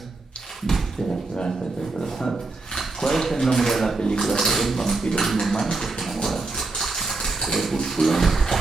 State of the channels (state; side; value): quieter; left; 3.5 dB